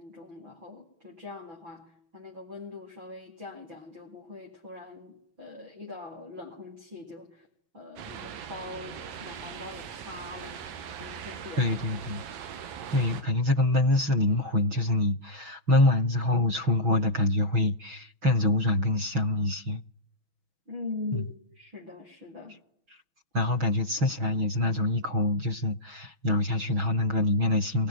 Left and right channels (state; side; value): late; left; 6.2 ms